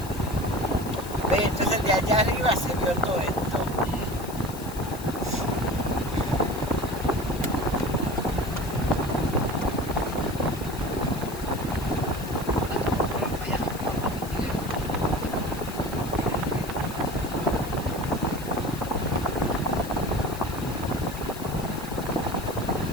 Ve, entonces de allá arriba se vio todo esto.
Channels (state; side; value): noise; left; hiss, 14 dB below the sound